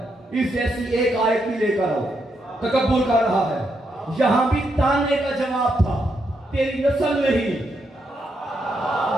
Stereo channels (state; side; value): normal; both; correlation 0.80